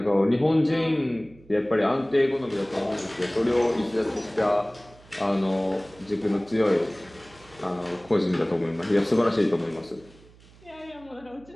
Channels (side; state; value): right; noise; hum, 25 dB below the sound